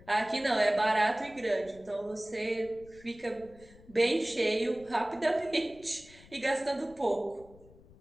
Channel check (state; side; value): noise; left; rumble, 23 dB below the sound